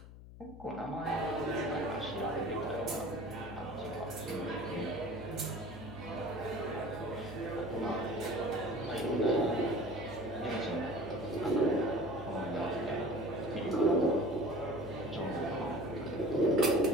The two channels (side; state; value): left; noise; hum, 16 dB below the sound